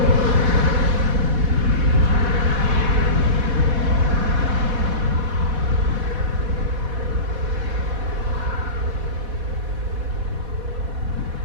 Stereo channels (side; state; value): left; late; 4.1 ms